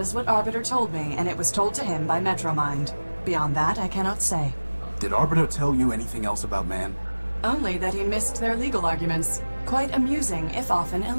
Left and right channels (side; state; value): both; inverted; correlation -1.00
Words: is what Arbiter told me, and it was told to him by Metromind. Beyond that, I cannot say. Did Arbiter tell you anything else about man? Only that he missed their legal arguments. Quite amusing, if often